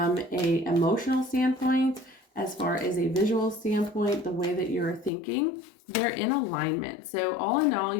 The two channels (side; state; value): right; drops out; at 5.1 s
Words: a emotional standpoint, as far as a visual standpoint, the way that you're thinking, they're in alignment. So all in all,